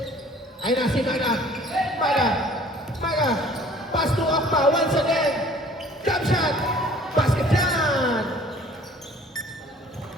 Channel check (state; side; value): normal; both; correlation 0.52